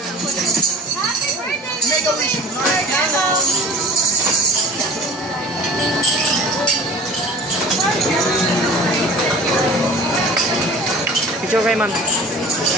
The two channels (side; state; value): both; normal; correlation 0.42